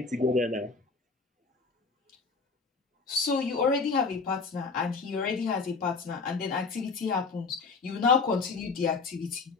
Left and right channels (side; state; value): right; quieter; 4.4 dB